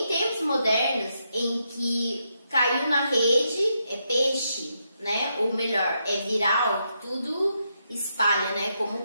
tempos modernos, em que caiu na rede, é peixe, né? Ou melhor, é viral, tudo espalha, né? Como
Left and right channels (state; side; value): inverted; both; correlation -0.81